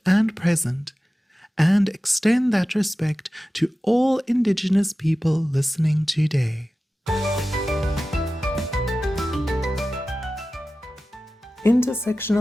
and present, and extend that respect to all Indigenous people listening today.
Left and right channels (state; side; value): normal; both; correlation 0.95